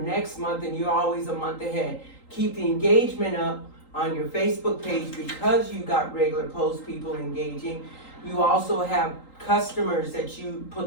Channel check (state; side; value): late; right; 3.8 ms